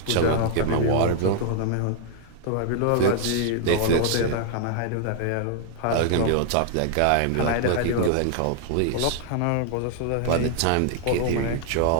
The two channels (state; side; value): different; both; correlation 0.00